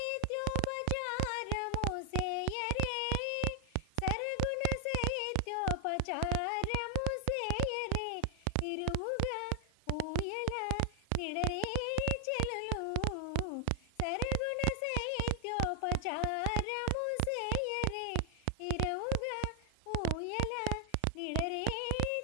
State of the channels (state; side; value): different; both; correlation 0.00